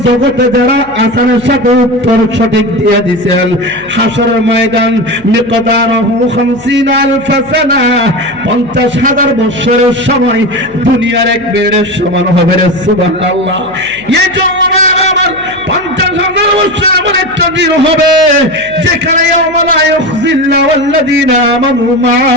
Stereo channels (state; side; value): noise; left; hum, 23 dB below the sound